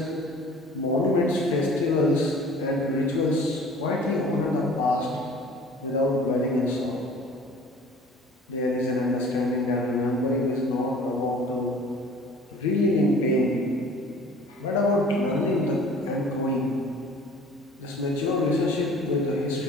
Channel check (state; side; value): normal; both; correlation 0.48